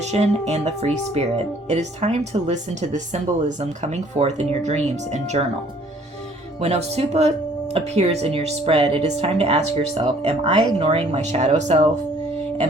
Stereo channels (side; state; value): both; normal; correlation 0.58